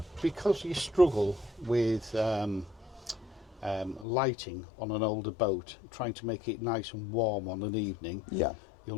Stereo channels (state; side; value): drops out; right; at 4.0 s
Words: because you struggle with lighting on an older boat, trying to make it nice and warm on an evening. Yeah. You'll